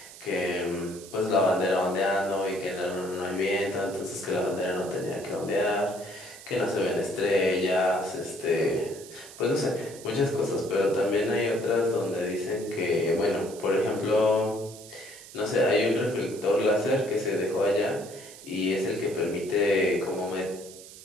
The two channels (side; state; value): right; noise; hiss, 17 dB below the sound